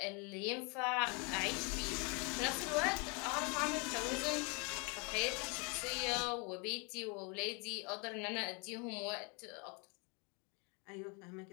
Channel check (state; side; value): quieter; right; 32.6 dB